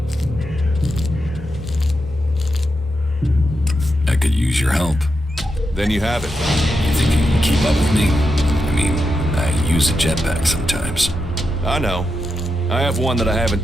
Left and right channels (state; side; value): normal; both; correlation 0.86